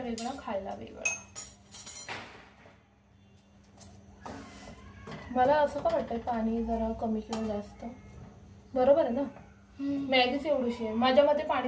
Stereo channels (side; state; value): both; identical; correlation 1.00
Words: वेगळा, खायला वेगळा. मला असं का वाटतंय पाणी जरा कमी किंवा जास्त बरोबर आहे ना. मॅगीच एवढीशी आहे. माझ्या मते